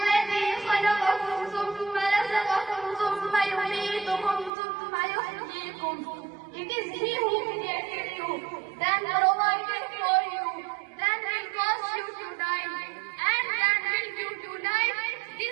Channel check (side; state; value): left; drops out; at 4.5 s